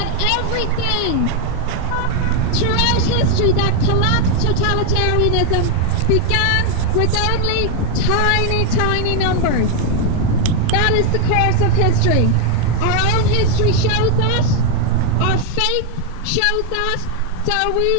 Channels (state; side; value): different; both; correlation 0.00